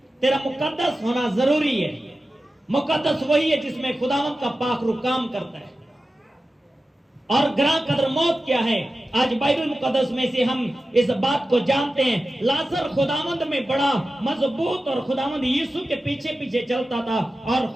تیرا مقدس ہونا ضروری ہے. مقدس وہی ہے جس میں خداوند کا پاک روح کام کرتا ہے. اور گراں قدر موت کیا ہے؟ آج بائبل مقدس میں سے ہم اس بات کو جانتے ہیں. لازر خداوند میں بڑا مضبوط اور خداوند یسوع کے پیچھے پیچھے چلتا تھا اور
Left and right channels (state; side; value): normal; both; correlation 0.93